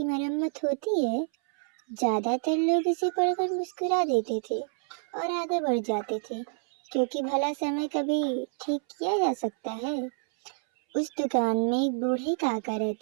मरम्मत होती है। ज्यादातर लोग इसे पढ़कर मुस्कुरा देते थे और आगे बढ़ जाते थे, क्योंकि भला समय कभी ठीक किया जा सकता है। उस दुकान में एक बूढ़े काका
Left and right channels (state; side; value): silent; left; 59 dB below the other